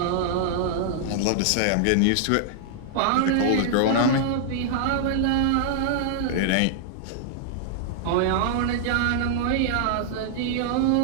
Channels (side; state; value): both; different; correlation -0.01